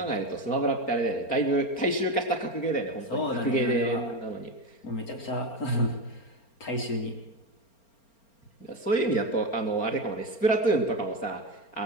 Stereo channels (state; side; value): late; right; 4.4 ms